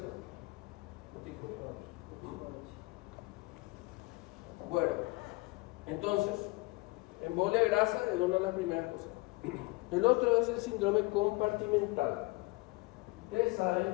Corticoides. Bueno, entonces, embolia grasa es una de las primeras cosas. El otro es el síndrome compartimental. Ustedes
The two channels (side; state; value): right; quieter; 24.0 dB